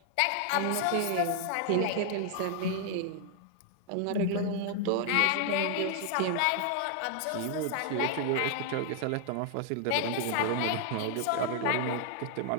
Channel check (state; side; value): different; both; correlation 0.00